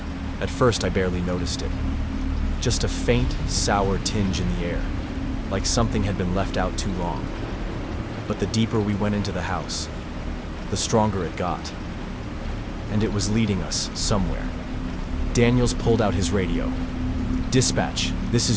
At first, I barely noticed it. Just a faint, sour tinge in the air, like something had been left out too long. But the deeper we went into the house, the stronger it got. And it was leading us somewhere. Daniels pulled out his radio. Dispatch, this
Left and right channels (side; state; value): both; identical; correlation 1.00